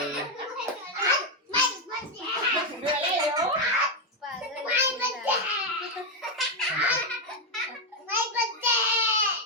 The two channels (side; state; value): both; normal; correlation 0.04